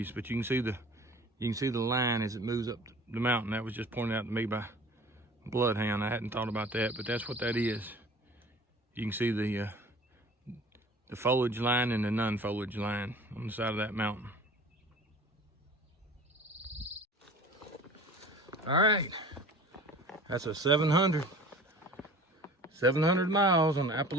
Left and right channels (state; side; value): normal; both; correlation 0.44